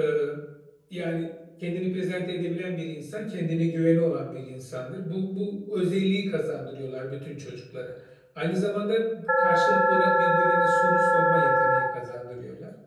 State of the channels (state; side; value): identical; both; correlation 1.00